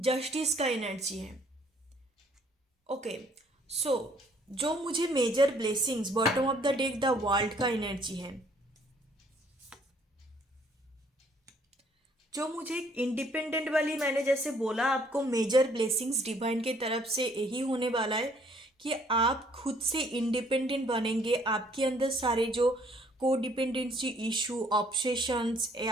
का एनर्जी है। ओके, सो जो मुझे major blessings bottom of the deck the world का एनर्जी है, जो मुझे इंडिपेंडेंट वाली, मैंने जैसे बोला आपको मेजर ब्लेसिंग्स डिवाइन के तरफ से यही होने वाला है कि आप खुद से इंडिपेंडेंट बनेंगे। आपके अंदर सारे जो को डिपेंडेंसी इशू, ऑब्सेशंस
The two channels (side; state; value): both; normal; correlation 0.62